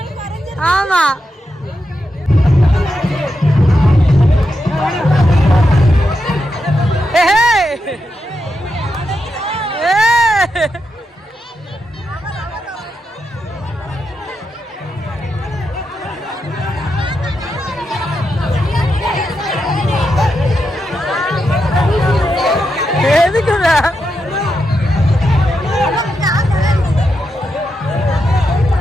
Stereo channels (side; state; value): both; normal; correlation 0.85